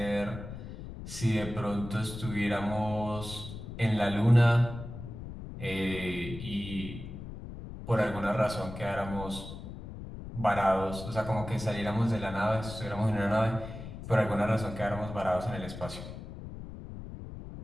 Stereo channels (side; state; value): left; noise; rumble, 10 dB below the sound